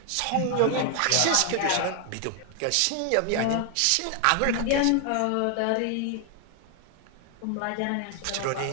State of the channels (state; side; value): different; both; correlation 0.00